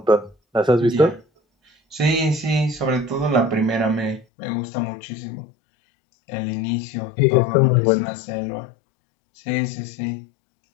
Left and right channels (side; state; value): right; drops out; at 4.2 s